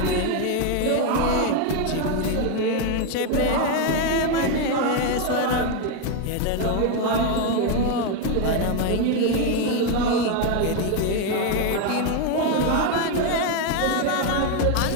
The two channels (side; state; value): both; different; correlation 0.02